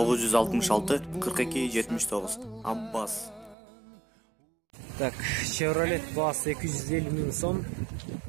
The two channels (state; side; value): drops out; left; at 3.6 s